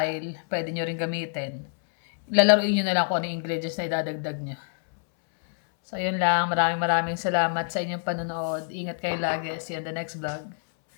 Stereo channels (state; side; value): silent; right; 61 dB below the other